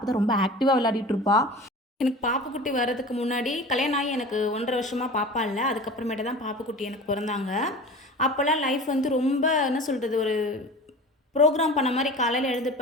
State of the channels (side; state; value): both; normal; correlation 0.37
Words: தான் ரொம்ப ஆக்டிவாக விளையாடிட்டு இருப்பா. எனக்கு பாப்புக்குட்டி வர்றதுக்கு முன்னாடி கல்யாணம் ஆகி எனக்கு 1.5 வருஷமா பாப்பா இல்ல. அதுக்கப்புறமேட்டு தான் பாப்புக்குட்டி எனக்கு பொறந்தாங்க. அப்போலாம் லைஃப் வந்து ரொம்ப என்ன சொல்றது, ஒரு ப்ரோக்ராம் பண்ண மாரி காலையில